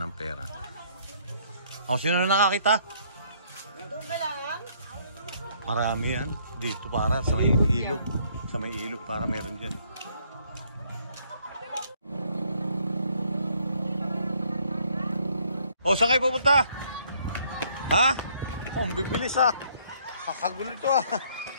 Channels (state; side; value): inverted; both; correlation -0.65